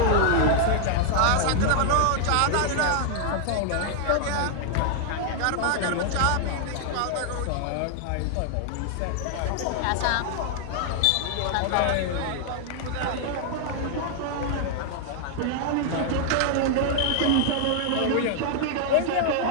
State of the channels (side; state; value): both; different; correlation 0.00